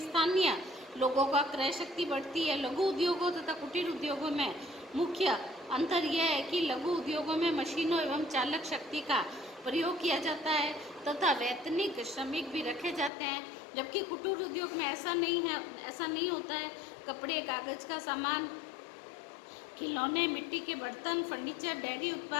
स्थानीय लोगों का क्रय शक्ति बढ़ती है। लघु उद्योगों तथा कुटीर उद्योगों में मुख्य अंतर यह है कि लघु उद्योगों में मशीनों एवं चालक शक्ति का प्रयोग किया जाता है तथा वैतनिक श्रमिक भी रखे जाते हैं, जबकि कुटीर उद्योग में ऐसा नहीं होता है। कपड़े, कागज का सामान, खिलौने, मिट्टी के बर्तन, फर्नीचर, डेयरी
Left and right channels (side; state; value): right; drops out; at 13.1 s